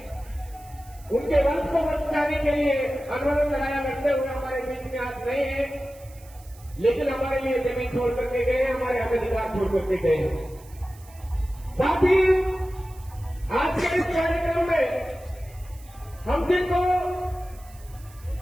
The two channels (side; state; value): right; noise; hiss, 24 dB below the sound